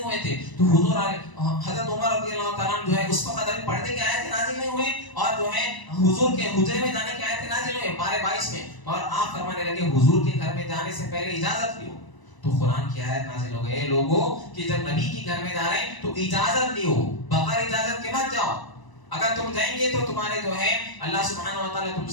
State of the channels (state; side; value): late; right; 1.0 ms